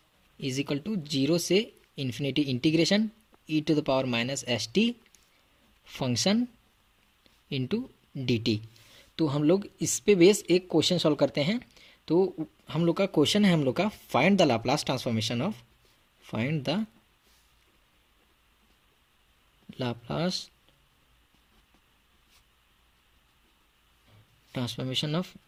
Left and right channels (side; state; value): both; identical; correlation 1.00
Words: is equal to zero से infinity integration e to the power minus s t function into d t. तो हम लोग इस पे बेस एक क्वेश्चन सॉल्व करते हैं। तो हम लोग का क्वेश्चन है हम लोग का find the Laplace transformation of